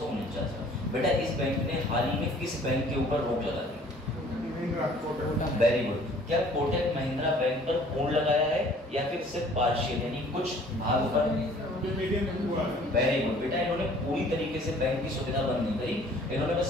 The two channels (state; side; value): normal; both; correlation 0.54